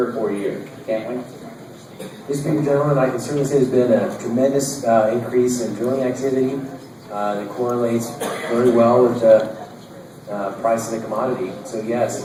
or 4 years, can't we? Mr. Speaker, gentlemen, I can certainly say there's been a tremendous increase in drilling activity that correlates very well with the price of the commodity. So yes,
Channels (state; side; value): identical; both; correlation 1.00